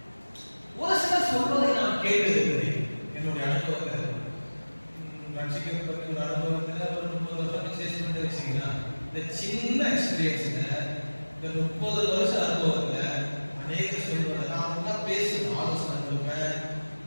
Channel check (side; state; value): both; inverted; correlation -1.00